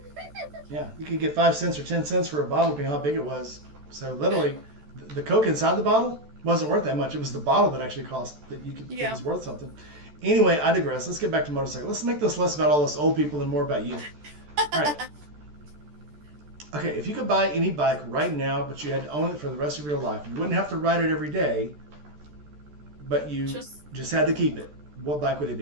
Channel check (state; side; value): late; left; 14 ms